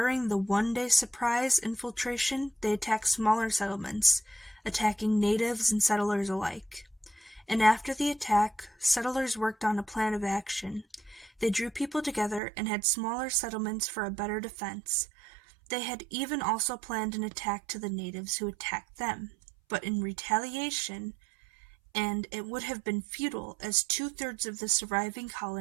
the one-day surprise infiltration, they attacked smaller settlements, attacking natives and settlers alike. And after the attack, settlers worked on a plan of action. They drew people together and had smaller settlements for a better defense. They had even also planned an attack to the natives who attacked them, but in retaliation, and it would have been futile, as 2/3 of the surviving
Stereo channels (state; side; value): drops out; left; at 12.4 s